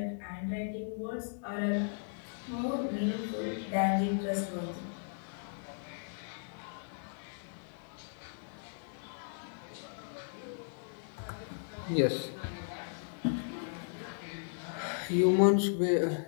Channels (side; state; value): right; silent; digital silence